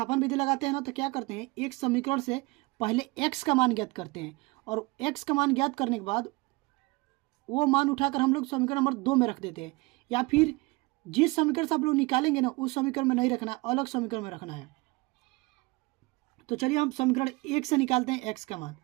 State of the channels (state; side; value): quieter; left; 24.2 dB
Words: विधि लगाते हैं ना तो क्या करते हैं, एक समीकरण से पहले x का मान ज्ञात करते हैं और x का मान ज्ञात करने के बाद वो मान उठाकर हम लोग समीकरण नंबर 2 में रख देते हैं, या फिर जिस समीकरण से आप लोग निकालेंगे ना उस समीकरण में नहीं रखना, अलग समीकरण में रखना है। तो चलिए हम समीकरण 1 से निकालते हैं x का मान।